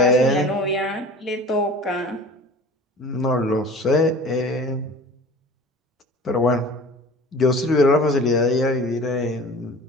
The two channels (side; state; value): both; normal; correlation 0.41